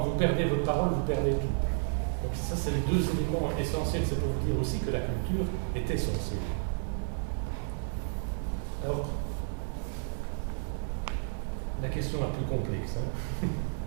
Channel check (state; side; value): silent; left; digital silence